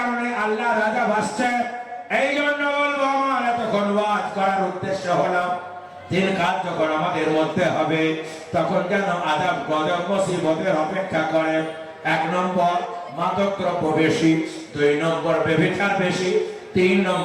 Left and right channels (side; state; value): both; identical; correlation 1.00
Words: আল্লাহ রাজা ভাসছে। এই জন্য বলবো, আমার এতক্ষণ ওয়াজ করার উদ্দেশ্য হলো 3 কাজ যখন আমাদের মধ্যে হবে, তখন যেন আযাব গজব মুসিবতের অপেক্ষা করে। 1 নম্বর মাদক দ্রব্য বেশি, 2 নম্বর ব্যভিচার বেশি, 3